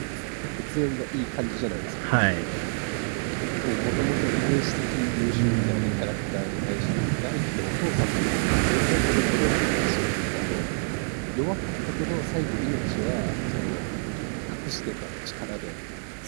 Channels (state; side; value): silent; left; 60 dB below the other